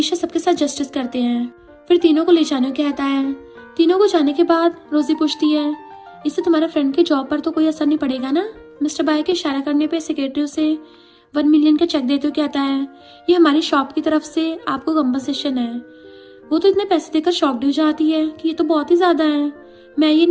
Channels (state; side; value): identical; both; correlation 1.00